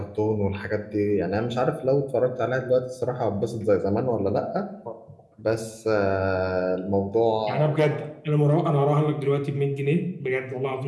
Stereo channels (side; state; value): both; identical; correlation 1.00